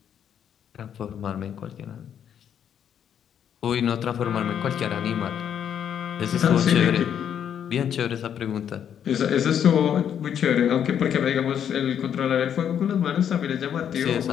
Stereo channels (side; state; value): right; quieter; 8.9 dB